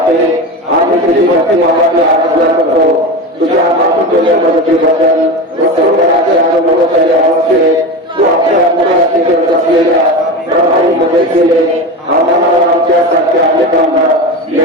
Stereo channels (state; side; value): normal; both; correlation 0.24